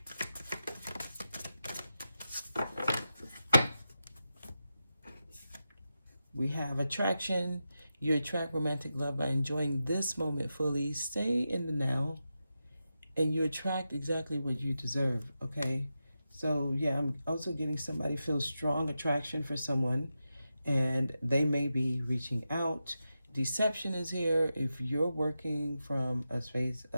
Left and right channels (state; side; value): inverted; both; correlation -0.90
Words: We have attraction. You attract romantic love by enjoying this moment fully. Stay in the now, and you attract exactly what you deserve, okay? So, yeah, I'm also getting somebody feel strong attraction for someone, and they may be reaching out. Deception is here. If you're working from a space